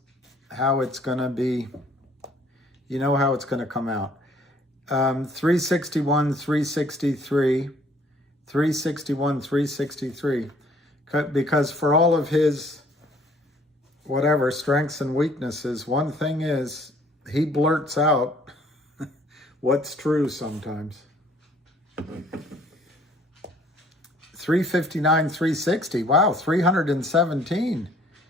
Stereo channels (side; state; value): both; normal; correlation 0.59